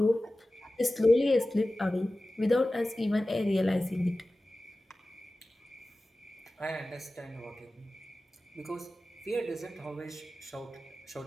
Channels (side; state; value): both; normal; correlation 0.96